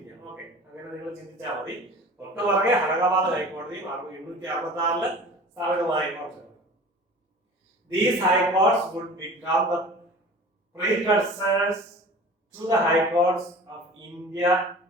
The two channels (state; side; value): normal; both; correlation 0.41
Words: ഓക്കെ, അങ്ങനെ നിങ്ങൾ ചിന്തിച്ചാൽ മതി. തൊട്ട് പുറകെ അലഹബാദ് ഹൈക്കോടതിയും 1866 സ്ഥാപിതമായ കോടതി. These high courts would become the precursors to the high courts of India,